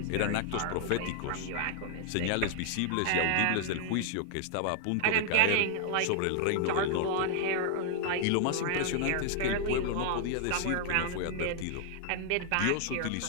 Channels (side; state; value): both; different; correlation 0.00